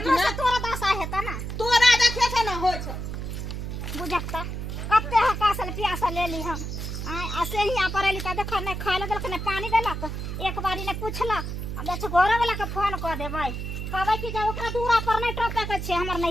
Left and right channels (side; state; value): right; noise; hum, 5 dB below the sound